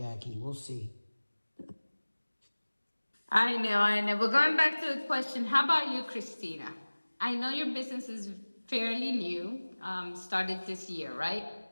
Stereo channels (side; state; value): both; inverted; correlation -1.00